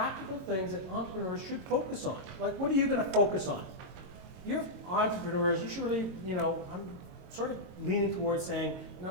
things that entrepreneurs should focus on. Like, what are you going to focus on? You're entrepreneurs, you should really, I'm sort of leaning towards saying,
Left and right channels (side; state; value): left; late; 22 ms